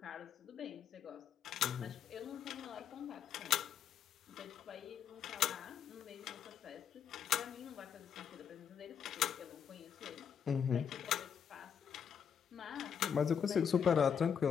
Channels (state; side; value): quieter; right; 7.8 dB